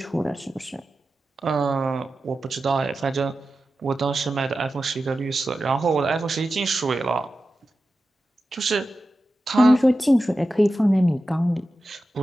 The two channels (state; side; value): normal; both; correlation 0.93